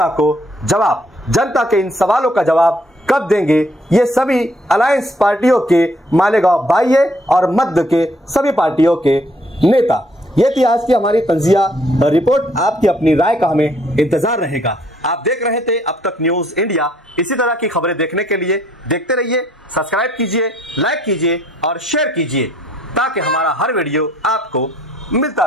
को जवाब, जनता के इन सवालों का जवाब कब देंगे ये सभी अलायंस पार्टियों के मालेगांव बाह्य और मध्य के सभी पार्टियों के नेता। ये थी आज की हमारी तंजिया रिपोर्ट। आपकी अपनी राय का हमें इंतजार रहेगा। आप देख रहे थे अब तक न्यूज इंडिया। इसी तरह की खबरें देखने के लिए देखते रहिए, सब्सक्राइब कीजिए, लाइक कीजिए और शेयर कीजिए ताकि हमारा हर वीडियो आपको मिलता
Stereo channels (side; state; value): both; normal; correlation 0.65